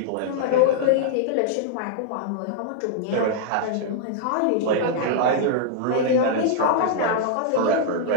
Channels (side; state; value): both; different; correlation -0.01